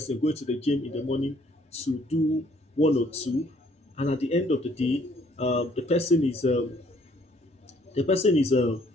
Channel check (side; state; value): both; normal; correlation 0.63